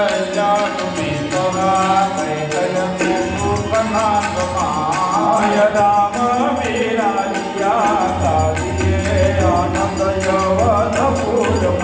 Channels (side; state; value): both; identical; correlation 1.00